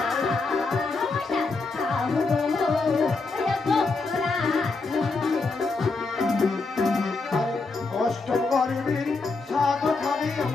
অষ্টম গর্বের সাত খাবি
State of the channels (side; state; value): right; quieter; 3.9 dB